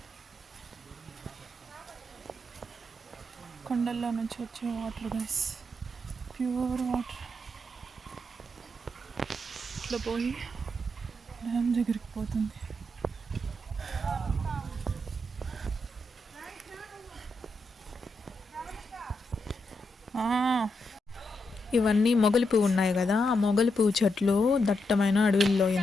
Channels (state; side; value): normal; both; correlation 0.83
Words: కొండల్లో నుంచి వచ్చే వాటర్ గైస్, ప్యూర్ వాటర్. ఇట్లా పోయి డ్యామ్ దగ్గరికి పోతుంది. ఇవన్నీ మొగలి పువ్వు ఉన్నాయి కదా, ఆ మొగలి పువ్వు చెట్లు దట్టమైన అడవుల్లో